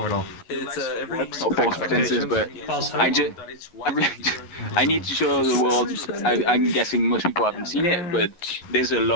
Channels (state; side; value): late; right; 11 ms